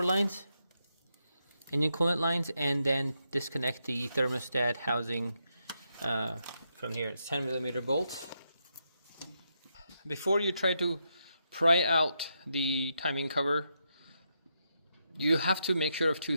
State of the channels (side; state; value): both; inverted; correlation -0.82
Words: lines, engine coolant lines, and then disconnect the thermostat housing from here. It's 10mm bolts. Before you try to pry out the timing cover, you have to make sure of two